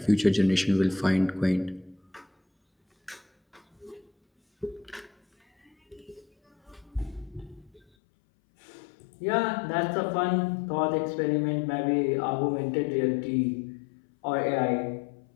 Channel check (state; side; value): drops out; right; at 7.8 s